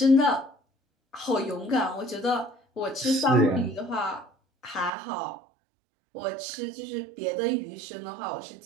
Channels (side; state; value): left; drops out; at 4.9 s